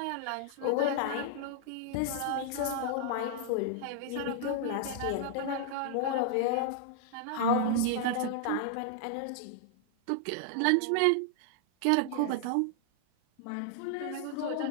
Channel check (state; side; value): different; both; correlation -0.01